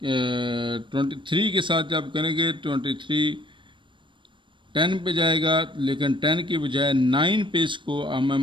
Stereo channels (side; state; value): left; late; 0.24 ms